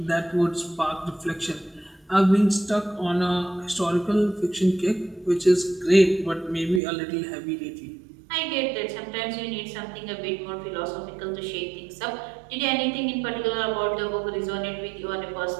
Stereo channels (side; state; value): left; drops out; at 6.8 s